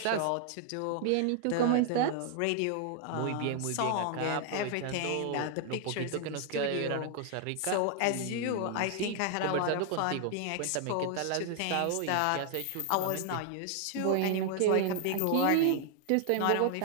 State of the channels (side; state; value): both; different; correlation 0.00